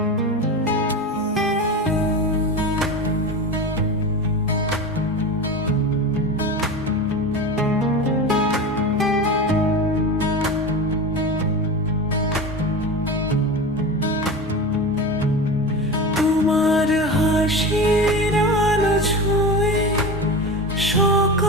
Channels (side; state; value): both; normal; correlation 0.27